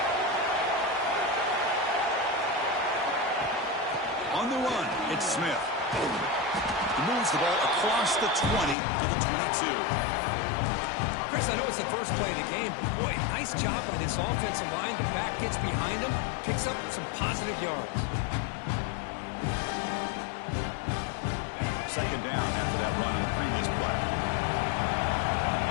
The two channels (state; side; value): drops out; right; at 8.8 s